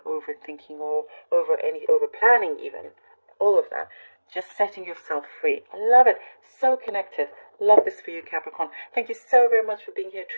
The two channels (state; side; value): inverted; both; correlation -1.00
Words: overthinking or over planning even. All of that. Just setting yourself free. I love it. So connected. Love this for you, Capricorn. Thank you so very much for being here.